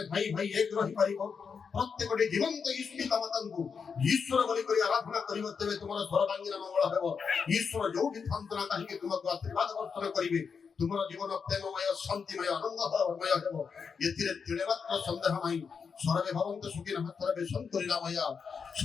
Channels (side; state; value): right; quieter; 5.9 dB